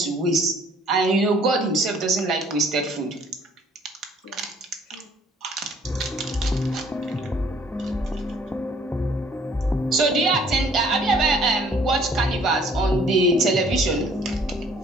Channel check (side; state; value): both; normal; correlation 0.58